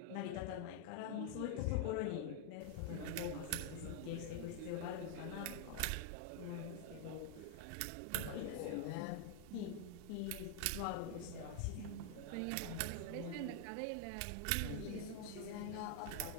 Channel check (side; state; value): both; different; correlation 0.00